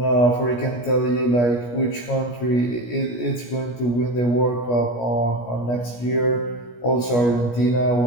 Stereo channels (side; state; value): right; late; 17 ms